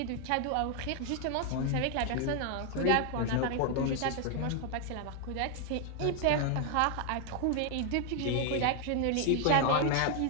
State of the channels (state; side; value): different; both; correlation 0.00